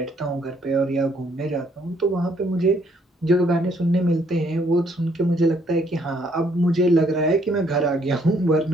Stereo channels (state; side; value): normal; both; correlation 0.67